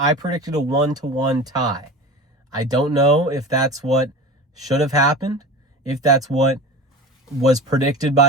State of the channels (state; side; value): normal; both; correlation 0.33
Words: predicted a 1-1 tie. I don't know if that's what should have happened, if that's what was predicted